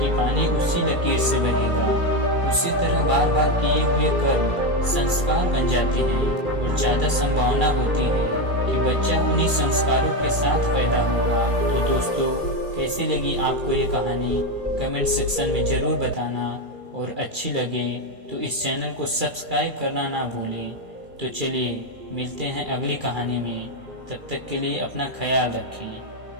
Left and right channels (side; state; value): left; late; 2.3 ms